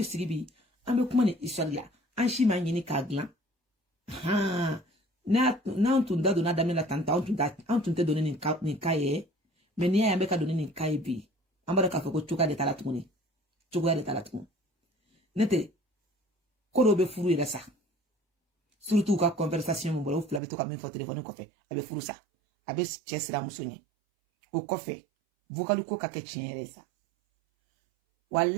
sigibi ambe kuma ni isalla an shi ma nyini ka glan ha na on da dona damela tanta on tun te donner ni kaye mais ni ya be ka donner ni kaye bi ambara ka ko chuka de talatuni nete ko be furu yere sa surtout ka conversation mo bolo fula be to ka min fo téléphone ko fe abe furu sa abe chesra musoni o ko fe vocal ko ka ke chiere sa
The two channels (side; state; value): left; drops out; at 20.4 s